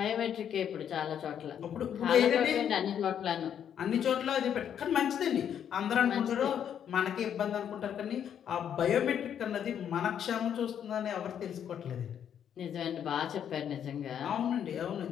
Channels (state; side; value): quieter; right; 9.0 dB